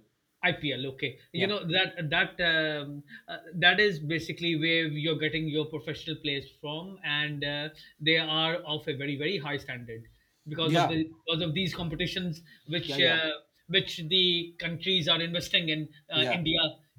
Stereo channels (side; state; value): both; identical; correlation 1.00